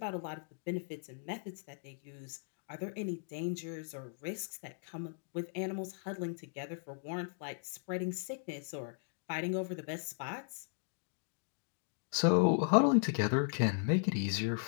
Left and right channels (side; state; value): right; silent; digital silence